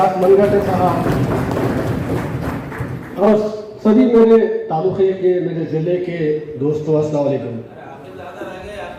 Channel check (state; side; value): identical; both; correlation 1.00